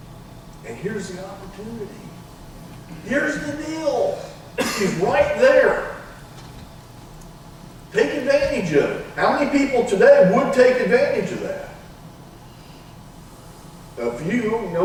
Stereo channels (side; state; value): both; identical; correlation 1.00